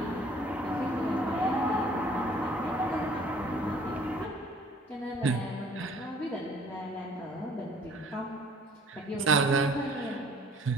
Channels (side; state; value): both; normal; correlation 0.55